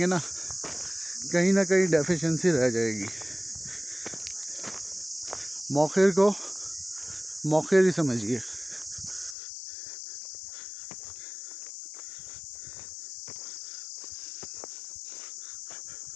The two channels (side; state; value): right; drops out; at 9.3 s